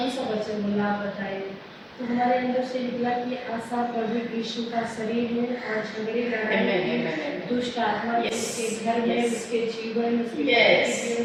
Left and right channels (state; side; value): identical; both; correlation 1.00